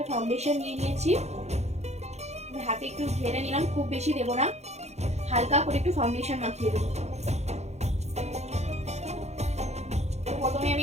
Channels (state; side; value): late; left; 0.32 ms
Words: ফাউন্ডেশন নিয়ে নিয়েছি, হাতে একটু ঢেলে নিলাম, খুব বেশি দেবো না, হালকা করে একটু ফাউন্ডেশন মাখিয়ে দেবো। তো প্রথমে আমি